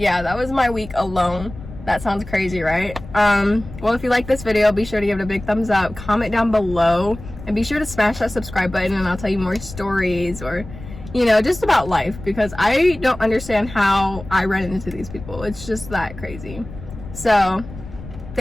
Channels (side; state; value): left; noise; rumble, 14 dB below the sound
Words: that was my week alone. That sounds crazy, right? Well, if you like this video, be sure to give it a big thumbs up, comment down below, and be sure to smash that subscribe button, and I'll tell you more stories or, you know, just about life, because I don't understand how I run into these people. It's just that crazy. So